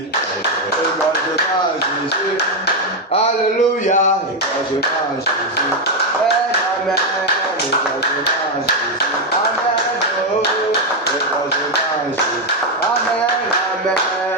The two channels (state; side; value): normal; both; correlation 0.04